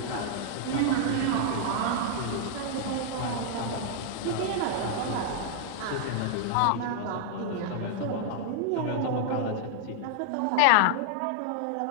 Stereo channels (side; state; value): both; different; correlation -0.01